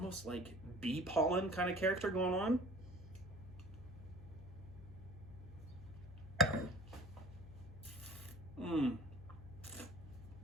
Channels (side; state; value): left; noise; hum, 14 dB below the sound